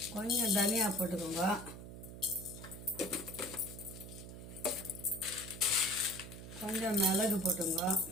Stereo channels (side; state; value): right; noise; hum, 12 dB below the sound